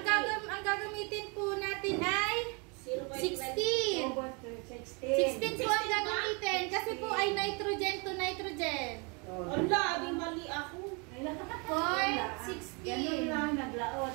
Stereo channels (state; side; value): quieter; left; 32.1 dB